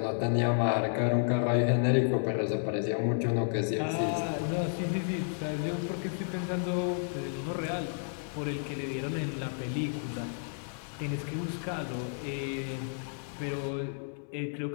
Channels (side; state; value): right; silent; 57 dB below the other